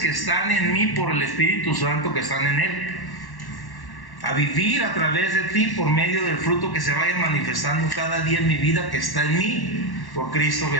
están en mí por el Espíritu Santo que están en Él. A vivir a través de ti por medio del fruto que se vaya manifestando cada día en mi vida que está en mí por Cristo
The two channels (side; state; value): right; late; 1.1 ms